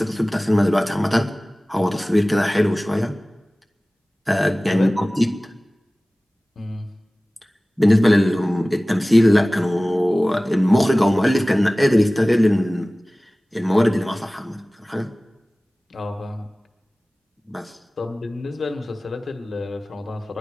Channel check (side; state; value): both; normal; correlation 0.98